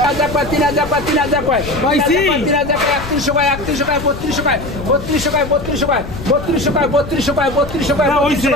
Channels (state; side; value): noise; left; rumble, 11 dB below the sound